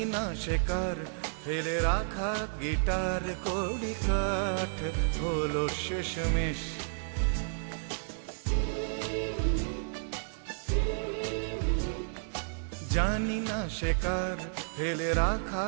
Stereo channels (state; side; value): silent; left; digital silence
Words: না শেখার ফেলে রাখা গিটার। কড়ি কাঠ হলো শেষমেশ, জানি না শেখার ফেলে রাখা